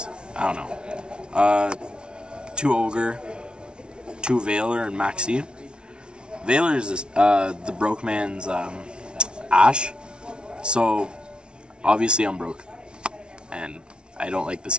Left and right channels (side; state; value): left; late; 0.056 ms